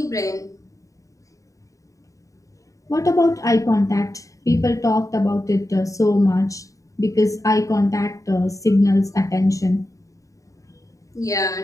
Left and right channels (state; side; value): late; right; 0.16 ms